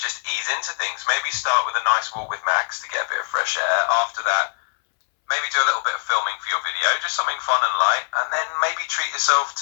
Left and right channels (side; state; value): right; silent; 64 dB below the other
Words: ease into things. Maybe start with a nice walk with Max to get a bit of fresh air. After that, maybe do a little bit of filming for your video, just something fun and light. And then maybe treat yourself